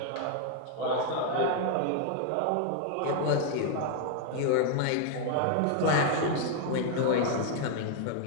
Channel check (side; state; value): both; different; correlation 0.00